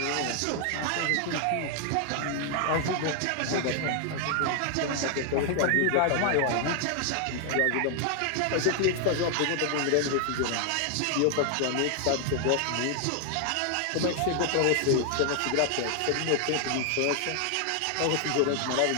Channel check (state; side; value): different; both; correlation 0.00